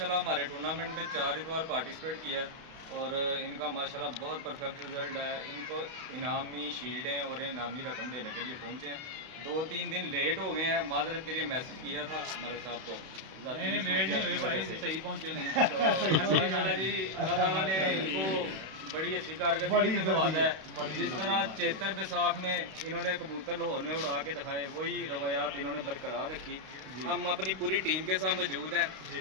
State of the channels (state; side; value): late; left; 32 ms